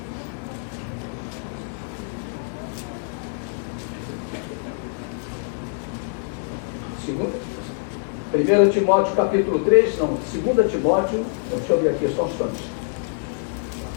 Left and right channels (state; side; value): silent; right; digital silence